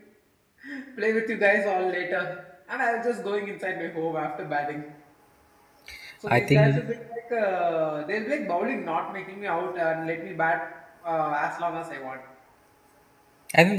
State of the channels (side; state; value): both; identical; correlation 1.00